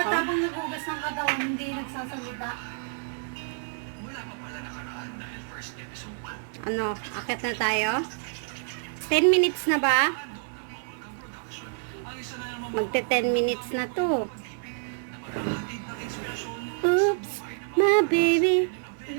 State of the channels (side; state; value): left; silent; 59 dB below the other